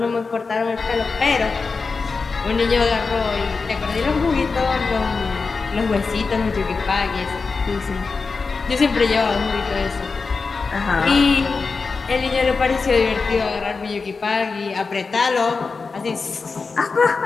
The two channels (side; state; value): right; quieter; 4.5 dB